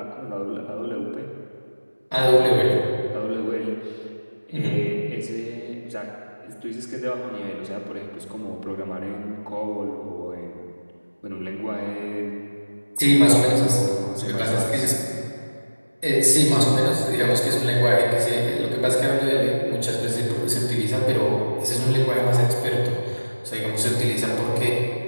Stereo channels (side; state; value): both; inverted; correlation -1.00